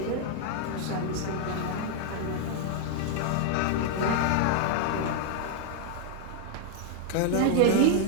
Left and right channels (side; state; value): both; different; correlation -0.01